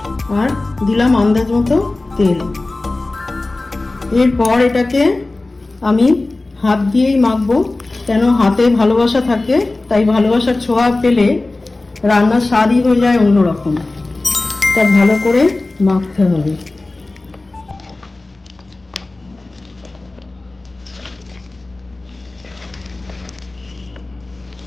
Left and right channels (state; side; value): quieter; right; 3.1 dB